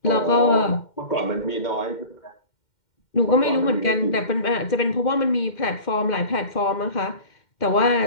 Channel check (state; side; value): late; right; 2.1 ms